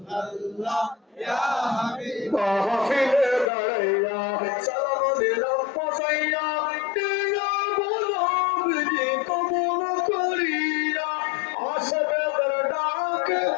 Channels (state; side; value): drops out; right; at 3.5 s